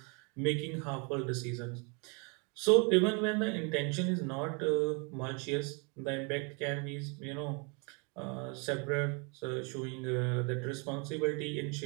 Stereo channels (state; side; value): quieter; left; 34.0 dB